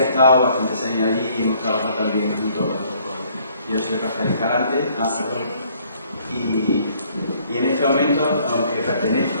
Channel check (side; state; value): both; inverted; correlation -0.62